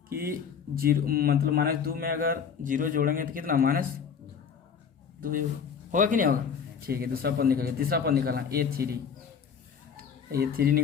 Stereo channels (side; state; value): right; quieter; 6.9 dB